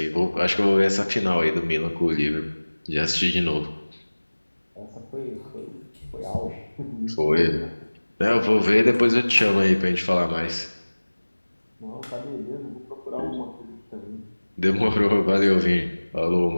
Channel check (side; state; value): both; inverted; correlation -1.00